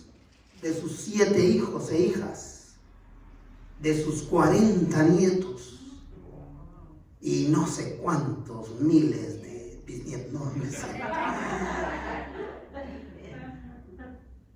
7 hijos e hijas, de sus 40 nietos y no sé cuántos miles de bisnietos, no me sé.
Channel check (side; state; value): both; identical; correlation 1.00